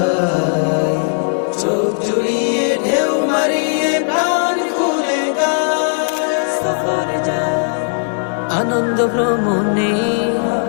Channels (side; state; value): right; silent; 58 dB below the other